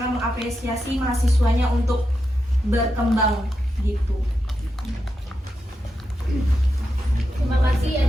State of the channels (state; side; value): normal; both; correlation 0.87